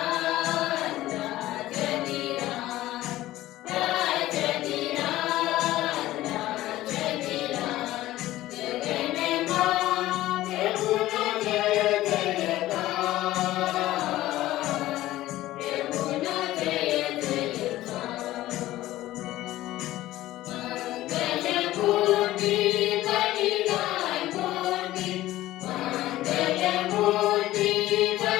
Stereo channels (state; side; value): quieter; right; 15.6 dB